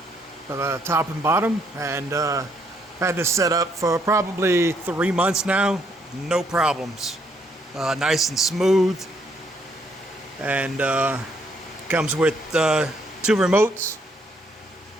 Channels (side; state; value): both; normal; correlation 0.70